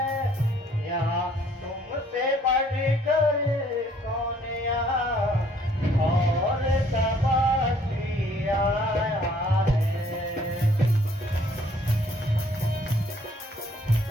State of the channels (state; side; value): normal; both; correlation 0.61